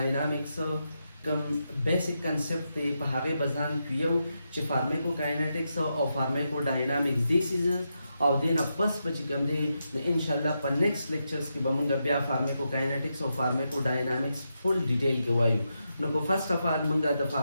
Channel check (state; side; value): inverted; both; correlation -0.85